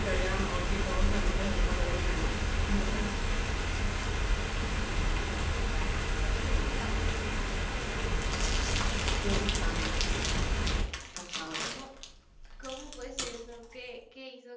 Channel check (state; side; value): identical; both; correlation 1.00